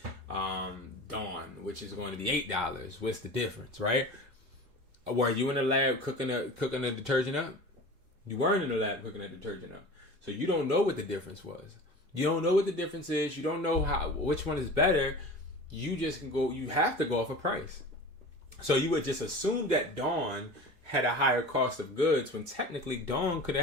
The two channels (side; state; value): left; late; 4.8 ms